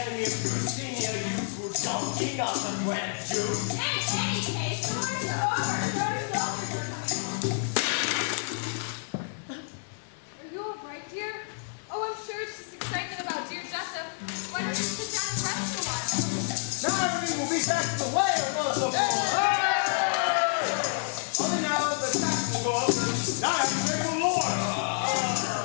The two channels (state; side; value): silent; right; digital silence